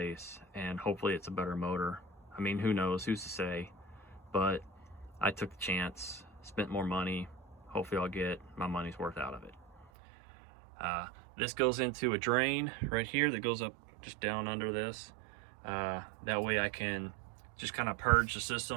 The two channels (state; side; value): drops out; left; at 9.9 s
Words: and hopefully it's a better motor. I mean, who knows, who's to say, but I took the chance, spent more money. Hopefully I'll get my money's worth out of it. This goes into a drain right here that goes up just down under this. That way I can just kind of purge the